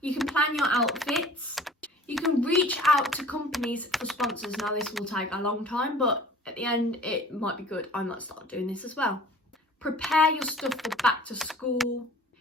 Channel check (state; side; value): normal; both; correlation 0.47